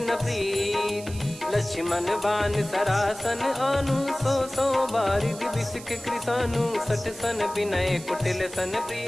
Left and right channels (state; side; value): noise; right; hiss, 16 dB below the sound